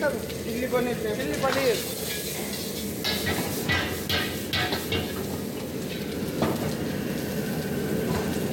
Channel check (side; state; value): both; identical; correlation 1.00